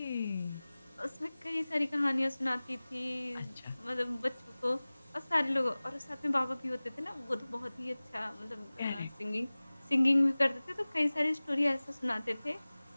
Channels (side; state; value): both; inverted; correlation -0.99